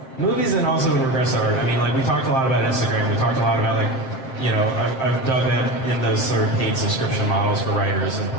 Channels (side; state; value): right; late; 7.6 ms